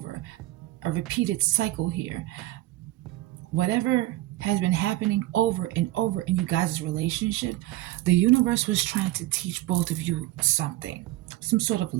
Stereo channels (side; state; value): left; quieter; 16.8 dB